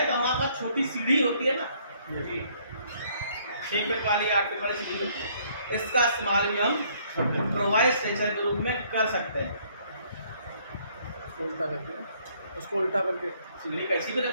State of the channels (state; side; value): inverted; both; correlation -0.64